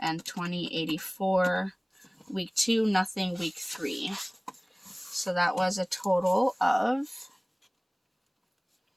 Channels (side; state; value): both; identical; correlation 1.00